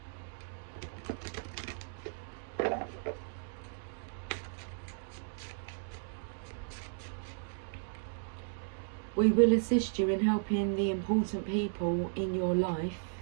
We will assist you in helping the important people in your life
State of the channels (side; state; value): left; silent; digital silence